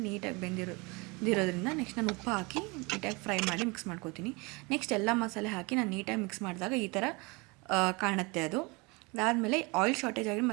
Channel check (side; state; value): left; quieter; 27.2 dB